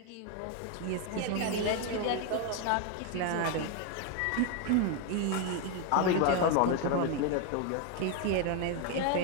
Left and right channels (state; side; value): different; both; correlation 0.01